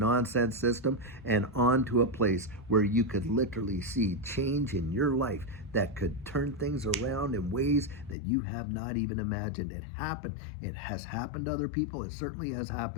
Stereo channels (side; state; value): right; drops out; at 8.2 s